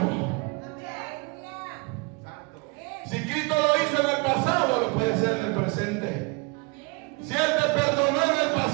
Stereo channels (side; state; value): left; quieter; 29.8 dB